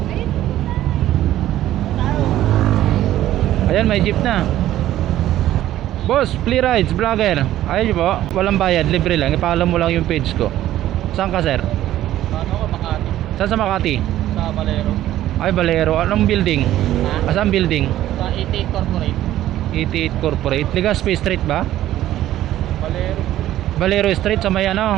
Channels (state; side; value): quieter; left; 13.5 dB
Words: Ayan, may jeep na. Boss, Free Rides, vlogger. Ayun po, walang bayad, libre lang. Ipaalam mo lang yung page ko. Saan ka, sir? Ano ko, Makati. Saan sa Makati? Sa Valero. Ay, Valero. Anong building? Ha? Saan building? Sa 88 Corporate. 88 Corporate. Legazpi Street ba? Valero. Valero Street sa may